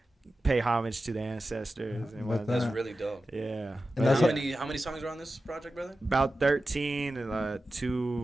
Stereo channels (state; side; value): normal; both; correlation 0.93